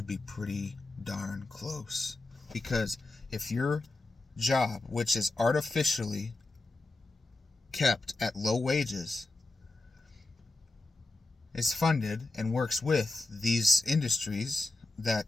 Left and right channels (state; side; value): quieter; right; 3.0 dB